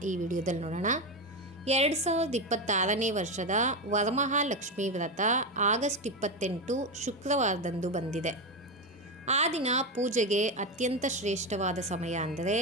ಈ ವಿಡಿಯೋದಲ್ಲಿ ನೋಡೋಣ. 2026ನೇ ವರ್ಷದ ವರಮಹಾಲಕ್ಷ್ಮಿ ವ್ರತ ಆಗಸ್ಟ್ 28 ಶುಕ್ರವಾರದಂದು ಬಂದಿದೆ. ಆ ದಿನ ಪೂಜೆಗೆ ಅತ್ಯಂತ ಶ್ರೇಷ್ಠವಾದ ಸಮಯ ಅಂದರೆ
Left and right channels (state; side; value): normal; both; correlation 0.13